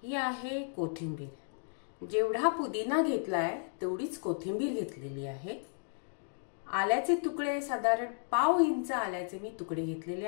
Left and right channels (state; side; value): silent; right; digital silence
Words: ही आहे कोथिंबीर। जेवढा पुदिना घेतलाय तेवढीच कोथिंबीर घेतलेली आहे। आल्याचे तुकडे साधारण पाव इंच आल्याचे मी तुकडे घेतलेले